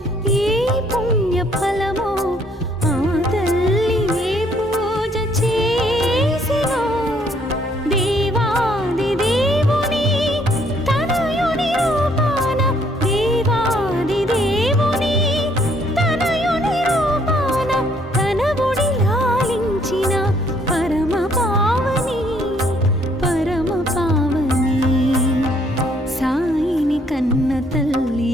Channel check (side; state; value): both; normal; correlation 0.66